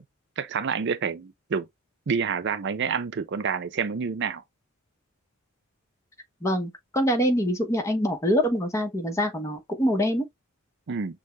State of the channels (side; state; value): both; normal; correlation 0.44